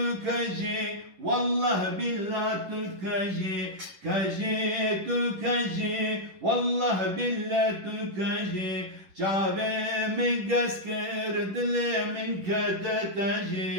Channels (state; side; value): late; left; 10 ms